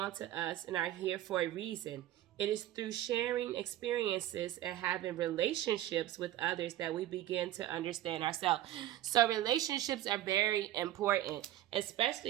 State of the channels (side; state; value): left; quieter; 13.5 dB